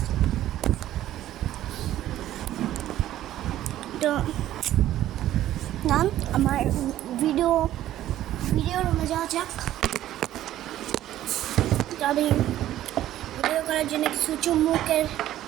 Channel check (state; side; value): quieter; left; 13.2 dB